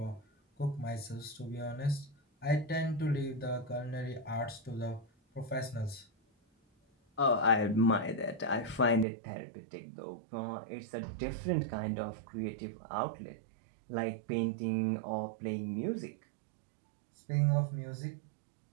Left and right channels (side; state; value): left; drops out; at 9.1 s